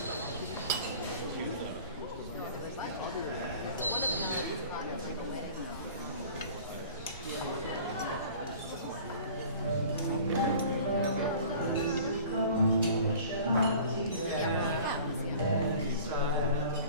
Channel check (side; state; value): both; inverted; correlation -0.45